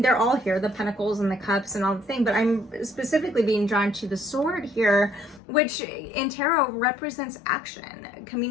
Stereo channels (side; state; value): right; drops out; at 5.4 s